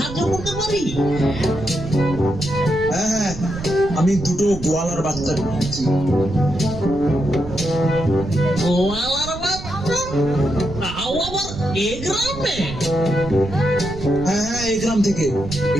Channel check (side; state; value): right; noise; rumble, 11 dB below the sound